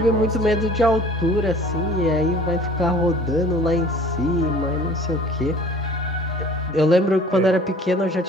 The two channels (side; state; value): both; normal; correlation 0.47